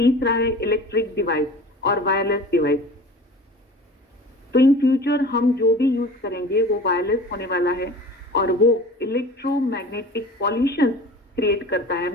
है इलेक्ट्रिक डिवाइस और वायरलेस डिवाइस। तो इन फ्यूचर हम जो भी यूज करेंगे वो वायरलेस होने वाला है और वो इलेक्ट्रोमैग्नेटिक पॉल्यूशन क्रिएट करता है,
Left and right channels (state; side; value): normal; both; correlation 0.40